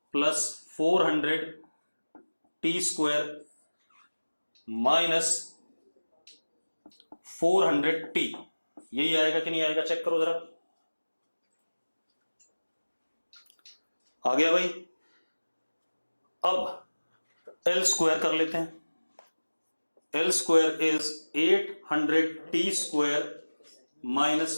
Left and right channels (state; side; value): inverted; both; correlation -1.00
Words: प्लस 400t स्क्वायर माइनस 400t। यही आएगा कि नहीं आएगा? चेक करो जरा। आ गया भाई? अब L स्क्वायर कर लेते हैं। L square is 800t square